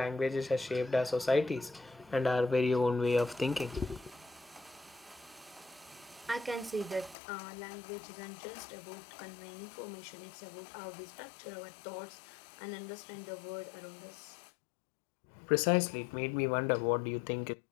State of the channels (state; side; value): drops out; right; at 7.2 s